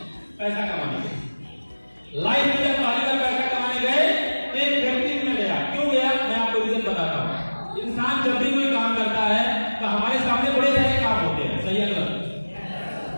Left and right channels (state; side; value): inverted; both; correlation -1.00